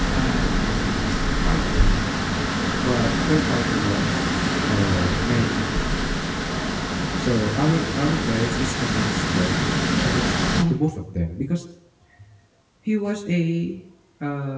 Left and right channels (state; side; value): identical; both; correlation 1.00